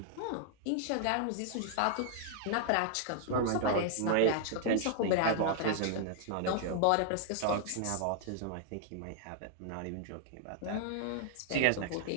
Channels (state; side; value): different; both; correlation -0.01